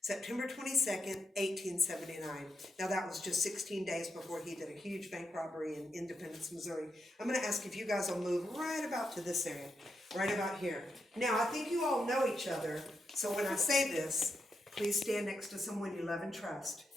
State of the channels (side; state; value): both; normal; correlation 0.84